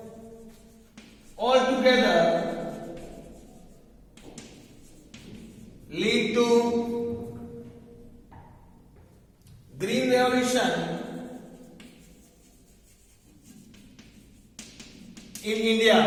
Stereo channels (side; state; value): both; identical; correlation 1.00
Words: altogether lead to green revolution in India.